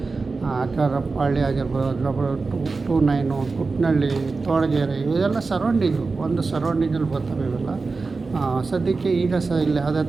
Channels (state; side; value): quieter; left; 4.1 dB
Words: ಅಕ್ಕರಪಳ್ಳಿ ಆಗಿರ್ಬೋದು, 29, ಕುಟ್ನಳ್ಳಿ, ತೋಳಗೆರೆ, ಇವೆಲ್ಲ ಸರೌಂಡಿಂಗು ಒಂದು ಸರೌಂಡಿಂಗಲ್ಲಿ ಬರ್ತವೆ ಇವೆಲ್ಲ. ಸದ್ಯಕ್ಕೆ ಈಗ ಇಲ್ಲಿ ಯಾವುದೇ